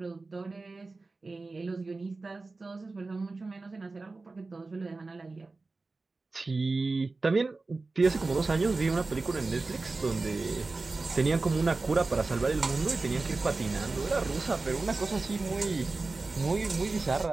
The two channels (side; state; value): left; quieter; 3.6 dB